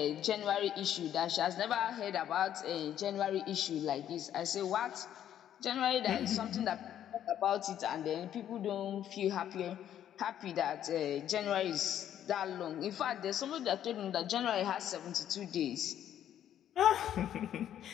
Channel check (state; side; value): quieter; right; 10.6 dB